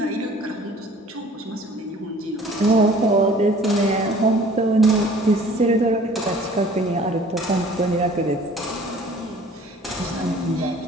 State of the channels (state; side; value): normal; both; correlation 0.51